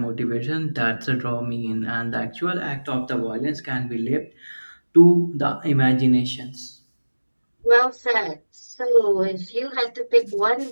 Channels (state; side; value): inverted; both; correlation -1.00